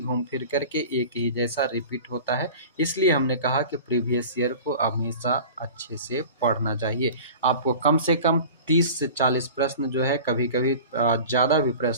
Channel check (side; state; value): both; inverted; correlation -0.39